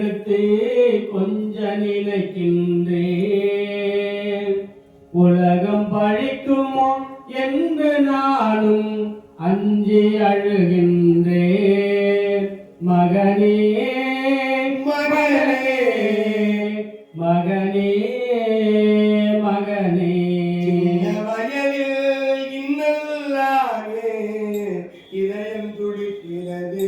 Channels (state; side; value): identical; both; correlation 1.00